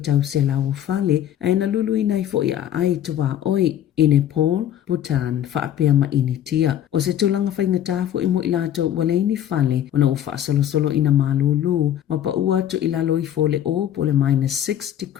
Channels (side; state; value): right; quieter; 10.8 dB